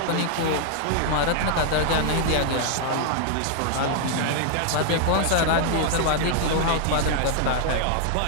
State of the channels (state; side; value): different; both; correlation 0.00